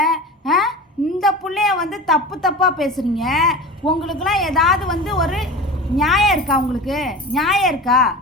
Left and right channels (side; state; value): both; normal; correlation 0.32